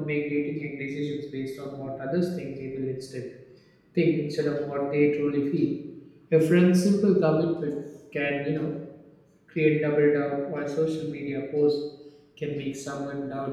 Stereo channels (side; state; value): both; identical; correlation 1.00